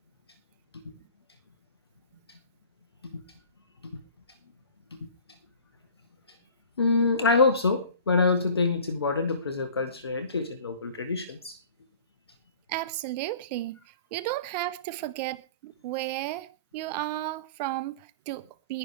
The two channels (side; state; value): both; inverted; correlation -0.44